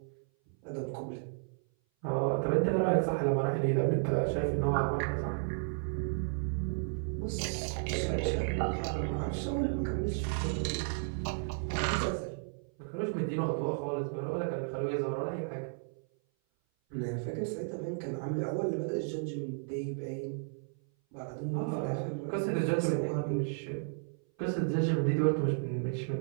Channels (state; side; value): silent; left; 56 dB below the other